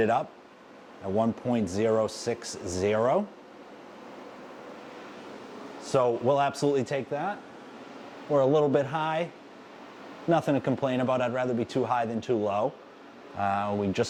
up at 1.060. So we'll absolutely take that. We're a little bit high. Nothing to complain about. I'd rather be too high than too low. We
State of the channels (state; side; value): identical; both; correlation 1.00